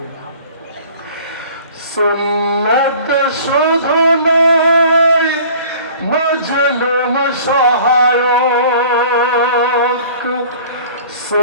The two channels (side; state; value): both; inverted; correlation -0.47